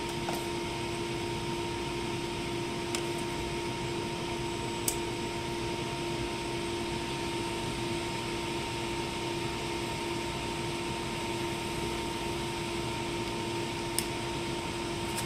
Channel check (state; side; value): identical; both; correlation 1.00